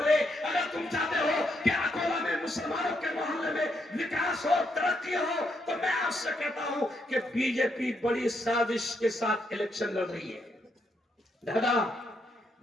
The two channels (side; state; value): both; normal; correlation 0.78